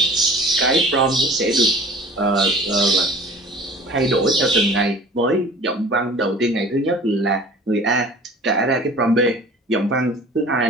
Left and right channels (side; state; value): both; normal; correlation 0.45